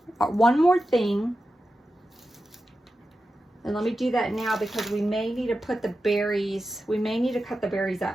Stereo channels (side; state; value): both; normal; correlation 0.91